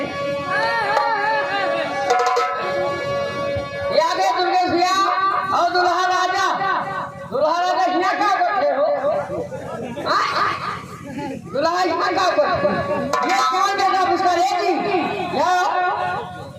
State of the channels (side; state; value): both; identical; correlation 1.00